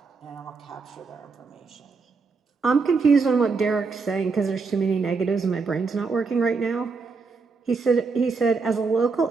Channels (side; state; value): left; quieter; 4.6 dB